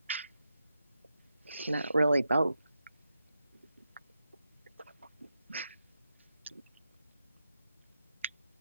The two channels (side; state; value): both; inverted; correlation -0.86